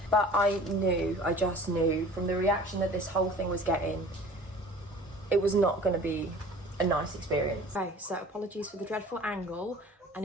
But I just knew from the reaction that this whole thing was getting, it was not going to be a nice experience. Okay, so apologies for the dreadful angle, and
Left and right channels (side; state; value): both; normal; correlation 0.46